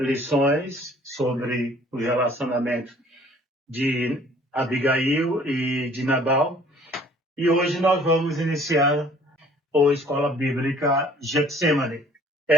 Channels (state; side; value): normal; both; correlation 0.55